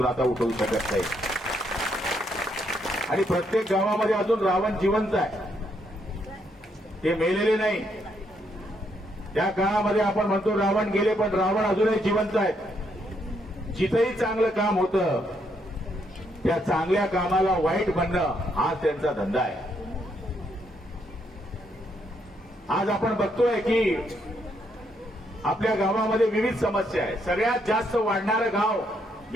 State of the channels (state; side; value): normal; both; correlation 0.75